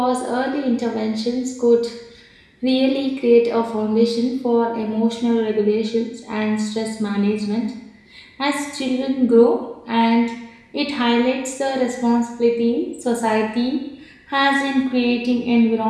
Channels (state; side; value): identical; both; correlation 1.00